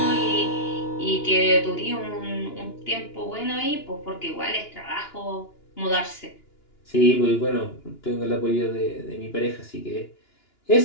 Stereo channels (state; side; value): late; right; 2.9 ms